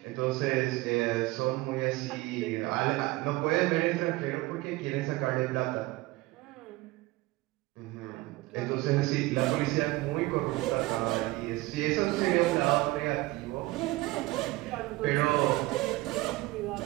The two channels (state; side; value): quieter; left; 20.0 dB